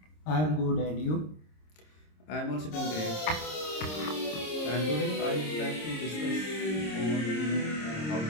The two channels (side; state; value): right; late; 26 ms